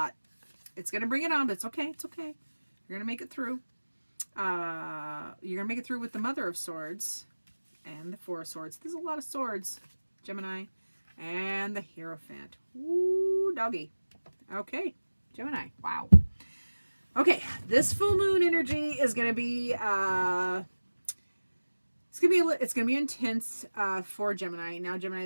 It's going to bring it on, but it's okay. It's okay. You're going to make it through. You're going to make it through with the Mother of Swords and the Four of Swords. There's a lot of swords, Gemini. And the Hierophant. Ooh, doggy. Okay, Gemini. Wow. Okay, this full moon energy is going to be it's going to be intense for Gemini. Now,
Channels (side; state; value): both; inverted; correlation -1.00